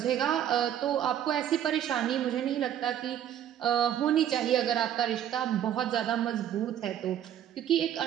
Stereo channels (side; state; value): left; quieter; 10.4 dB